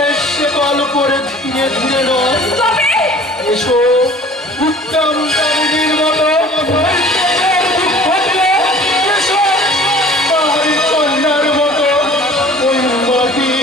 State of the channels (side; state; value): both; normal; correlation 0.47